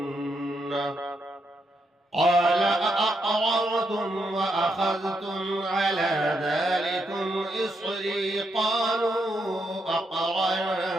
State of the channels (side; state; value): both; normal; correlation 0.80